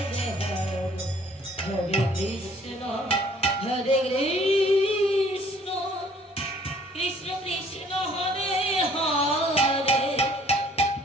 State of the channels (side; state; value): both; normal; correlation 0.57